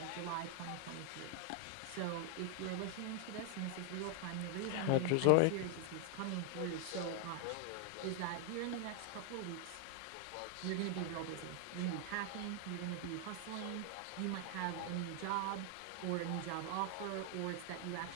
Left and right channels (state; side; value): different; both; correlation 0.00